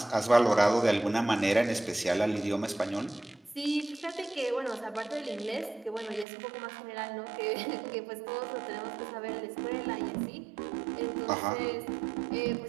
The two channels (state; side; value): drops out; left; at 6.2 s